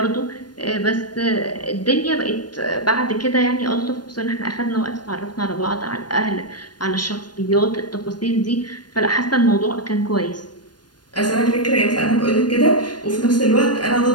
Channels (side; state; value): right; late; 0.70 ms